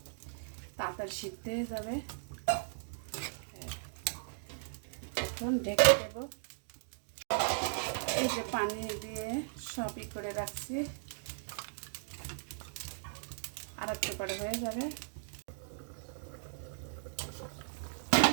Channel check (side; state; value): left; silent; digital silence